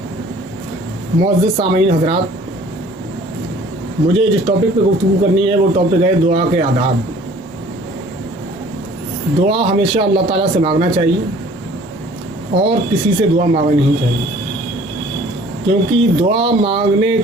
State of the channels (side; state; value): both; normal; correlation 0.52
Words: معزز سامعین حضرات، مجھے جس ٹاپک پہ گفتگو کرنی ہے وہ ٹاپک ہے دعا کے آداب۔ دعا ہمیشہ اللہ تعالیٰ سے مانگنا چاہیے اور کسی سے دعا مانگنا نہیں چاہیے، کیونکہ دعا مانگنے